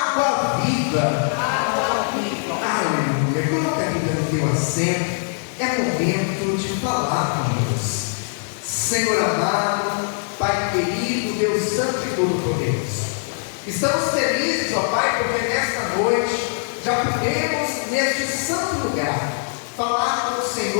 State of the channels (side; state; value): right; silent; digital silence